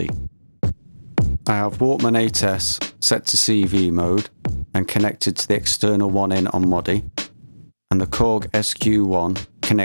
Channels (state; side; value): inverted; both; correlation -1.00